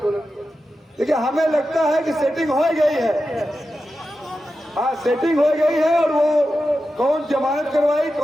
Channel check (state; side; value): normal; both; correlation 0.91